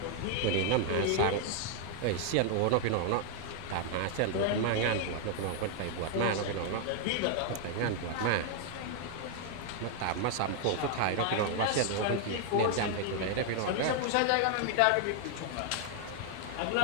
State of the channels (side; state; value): both; different; correlation 0.00